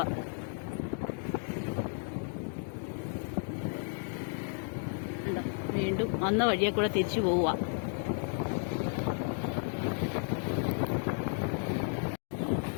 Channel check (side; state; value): right; silent; 55 dB below the other